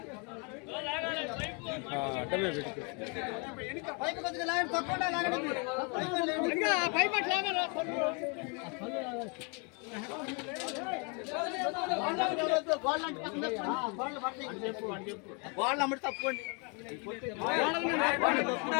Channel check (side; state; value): right; quieter; 34.6 dB